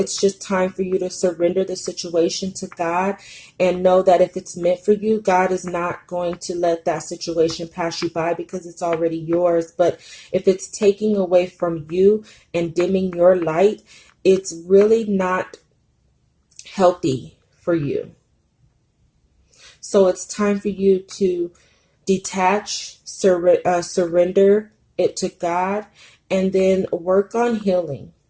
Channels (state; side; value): identical; both; correlation 1.00